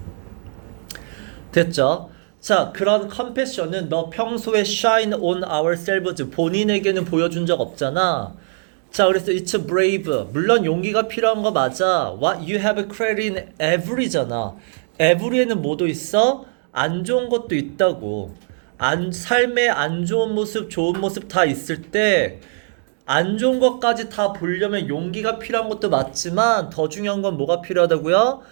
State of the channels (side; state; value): left; silent; digital silence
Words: 됐죠? 자, 그런 컴패션은 너 평소에 shine on ourselves 본인에게는 보여준 적 없잖아. 자, 그래서 it's brave. 물론 용기가 필요한 거 맞아. What you have credit in every잖아. every에는 뭐도 있어? 안 좋은 것도 있다고. 삶의 안 좋은 모습, 좋은 모습 다 있을 때 안 좋은 것까지 다 보려면 용기가 필요한 것도 맞지만 더 중요한 건 뭐가 필요하다고요?